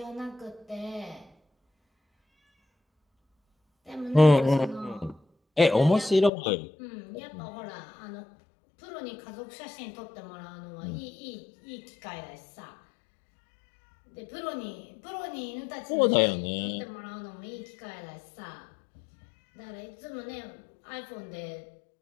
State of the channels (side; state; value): right; drops out; at 6.3 s